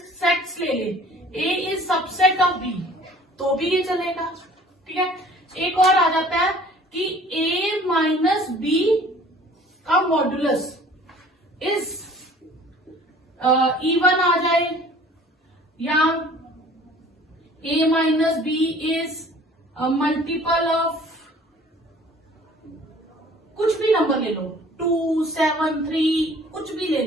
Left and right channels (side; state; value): both; normal; correlation 0.50